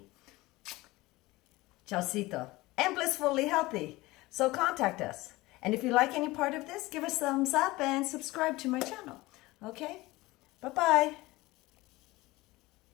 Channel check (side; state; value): right; quieter; 20.2 dB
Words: Chaucito. And blissfully healthy. So contact us. And if you like any part of this, give us a thumbs up and subscribe to my channel. Okay? Bye-bye.